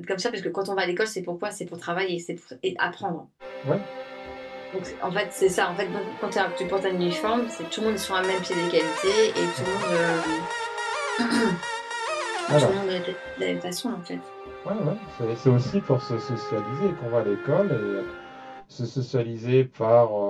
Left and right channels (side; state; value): both; identical; correlation 1.00